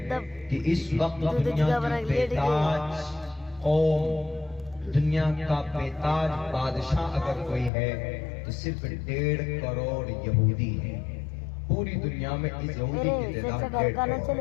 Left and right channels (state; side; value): drops out; right; at 7.7 s